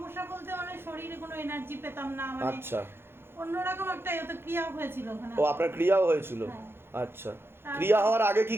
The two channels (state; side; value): late; left; 0.11 ms